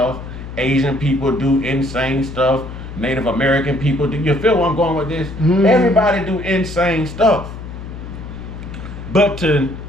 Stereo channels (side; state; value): left; noise; hum, 11 dB below the sound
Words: Asian people do insane stuff. Native American people do. You feel where I'm going with this? Everybody do insane stuff. But to